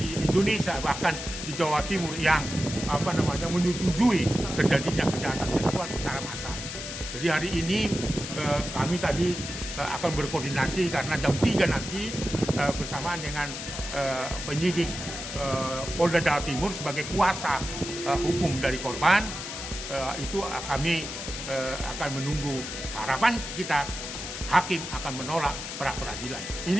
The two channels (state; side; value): noise; left; hiss, 7 dB below the sound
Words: Indonesia bahkan di Jawa Timur yang menyetujui terjadinya kejahatan seksual secara massal. Jadi hari ini kami tadi akan berkoordinasi karena jam 3 nanti bersamaan dengan penyidik Polda Jawa Timur sebagai kuasa hukum dari korban, itu kami akan menunggu. Harapan kita hakim akan menolak pra peradilan.